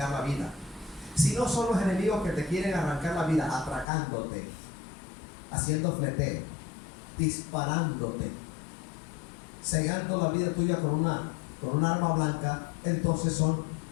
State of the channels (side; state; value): right; drops out; at 3.9 s